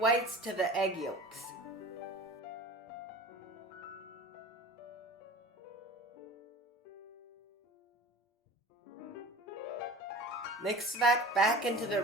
to the egg yolks. Mix that back into the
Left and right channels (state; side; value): normal; both; correlation 0.38